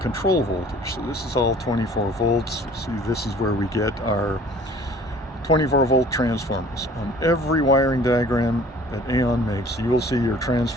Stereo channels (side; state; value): both; normal; correlation 0.50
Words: voltage. So this is all 24 volts. See, this is where we get our 24 volt transformers. On every wiring diagram that AAON makes, you will see your